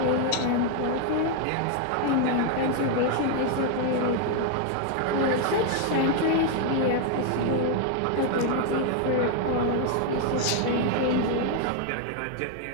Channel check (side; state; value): both; different; correlation 0.00